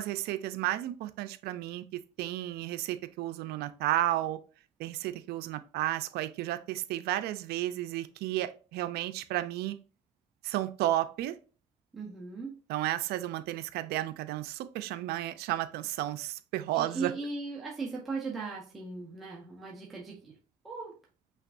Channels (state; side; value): quieter; left; 11.9 dB